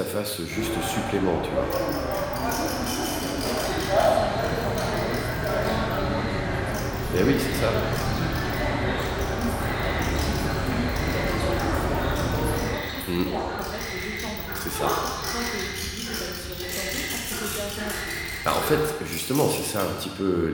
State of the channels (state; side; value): identical; both; correlation 1.00